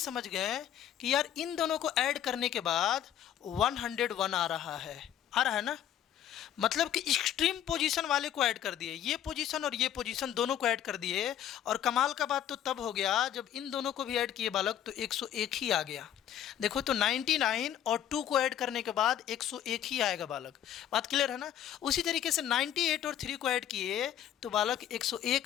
गए कि यार इन दोनों को ऐड करने के बाद 101 आ रहा है ना, मतलब कि एक्सट्रीम पोजीशन वाले को ऐड कर दिए, ये पोजीशन और ये पोजीशन दोनों को ऐड कर दिए। और कमाल का बात तो तब हो गया जब इन दोनों को भी ऐड किए बालक, तो 101 ही आ गया। देखो तो 99 और 2 को ऐड करने के बाद 101 ही आएगा बालक। बात क्लियर है ना। उसी तरीके से 98 और 3 को ऐड किए तो बालक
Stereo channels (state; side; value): quieter; right; 10.6 dB